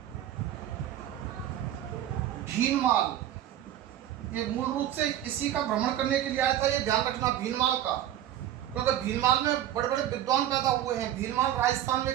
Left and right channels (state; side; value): quieter; left; 11.7 dB